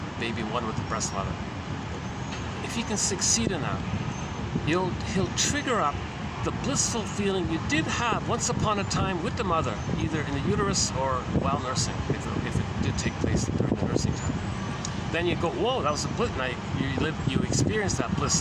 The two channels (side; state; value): both; identical; correlation 1.00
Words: baby one with the breast mother. If he can succeed in that, he'll trigger up the blissful feeling you did have once upon a time with the mother, either in the uterus or while nursing, if it did take place during the nursing time. Then you go, whoa, that was a bliss. Now you experience that bliss